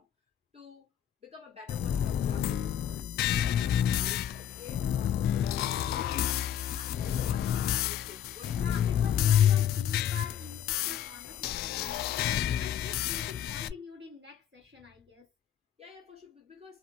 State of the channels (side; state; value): right; quieter; 9.9 dB